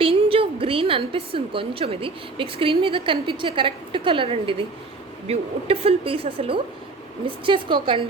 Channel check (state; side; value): quieter; left; 3.6 dB